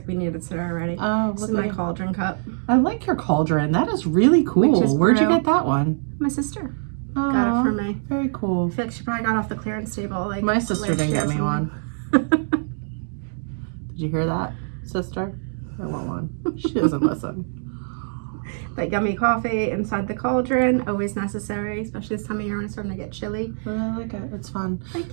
we needed it already. Oh, This is my cauldron cup. I like your cauldron. That is really cool. Where'd you get that one? My sister Oh, got it for me. Very cool. I feel like she probably got off the clearance table. Like My sister didn't get me one. Did you hear that, sister? I want one. She doesn't listen. But yummy coffee inside the cauldron, always necessary, especially this time of year when it's starting to get chilly. But I like it. It's fun. Thank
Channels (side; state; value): left; silent; digital silence